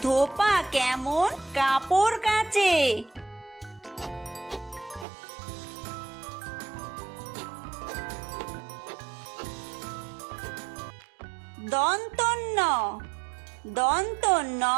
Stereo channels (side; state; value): left; drops out; at 5.1 s